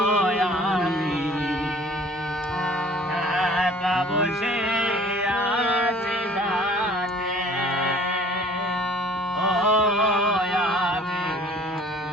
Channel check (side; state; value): both; normal; correlation 0.50